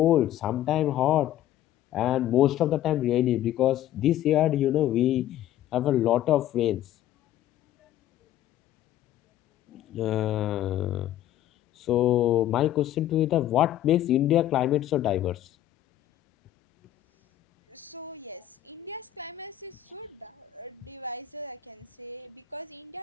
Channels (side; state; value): right; quieter; 12.7 dB